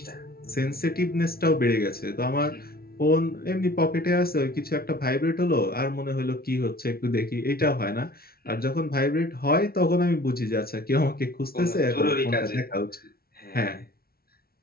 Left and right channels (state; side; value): late; right; 0.44 ms